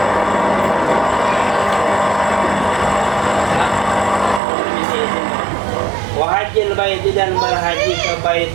Wahajil baiti, dan berhaji ke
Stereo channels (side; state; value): left; drops out; at 4.4 s